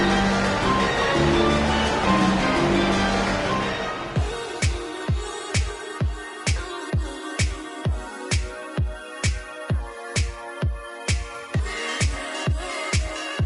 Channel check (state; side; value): identical; both; correlation 1.00